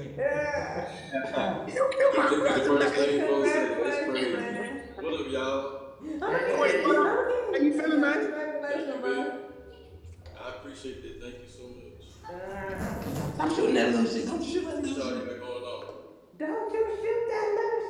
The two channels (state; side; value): identical; both; correlation 1.00